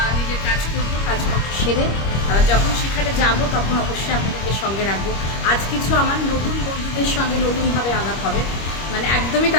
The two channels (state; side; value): late; right; 25 ms